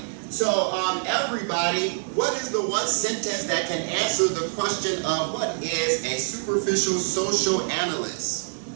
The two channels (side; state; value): left; silent; 62 dB below the other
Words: So, everybody, what is the one sentence that can answer the question of what is a superficial social analyst?